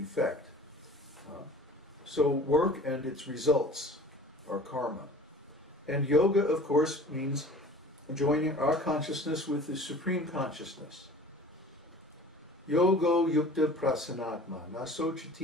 So work and its results are karma. And yoga, of course, means joining our consciousness with the Supreme Consciousness. Yogo yukta prasanatma, na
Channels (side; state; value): both; normal; correlation 0.45